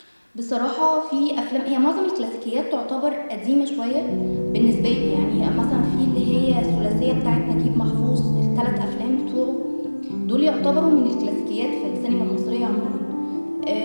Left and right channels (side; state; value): both; inverted; correlation -1.00